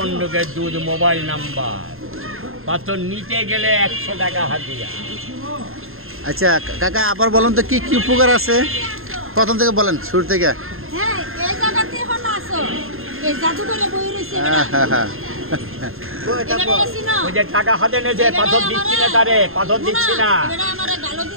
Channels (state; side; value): late; left; 0.61 ms